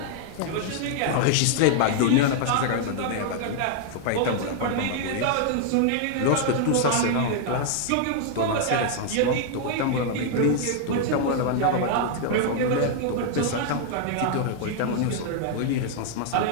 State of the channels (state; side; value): different; both; correlation 0.00